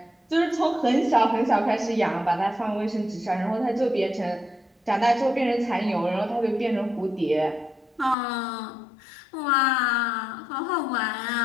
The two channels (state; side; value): drops out; right; at 8.2 s